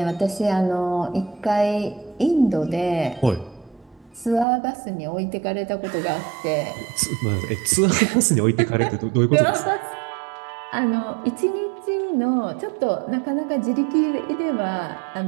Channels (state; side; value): drops out; left; at 4.5 s